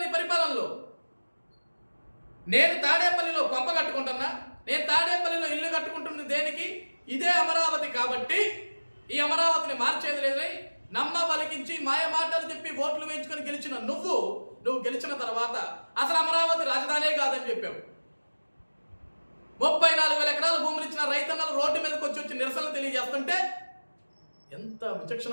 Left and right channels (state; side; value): inverted; both; correlation -1.00